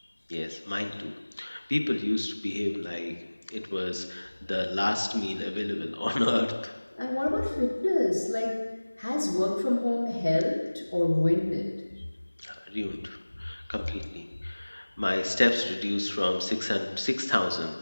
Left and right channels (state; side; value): inverted; both; correlation -1.00